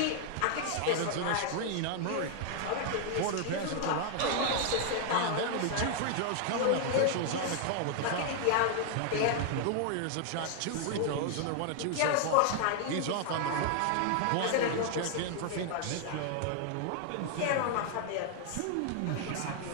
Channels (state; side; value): different; both; correlation 0.00